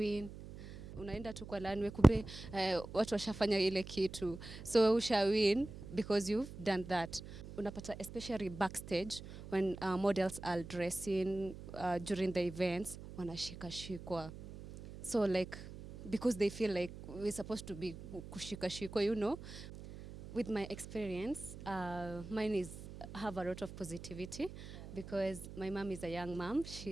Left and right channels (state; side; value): noise; right; hum, 13 dB below the sound